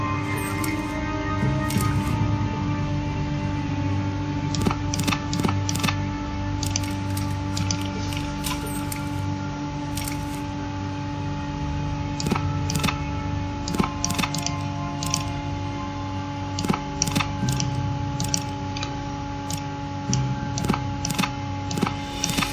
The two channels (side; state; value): both; identical; correlation 1.00